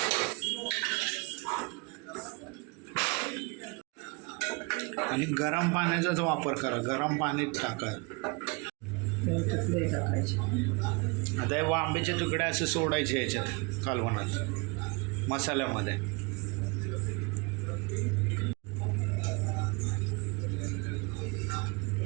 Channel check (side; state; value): left; quieter; 29.4 dB